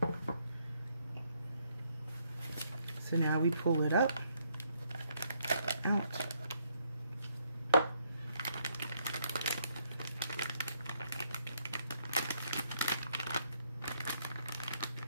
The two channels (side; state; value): both; inverted; correlation -0.72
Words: So now we pull it up, out.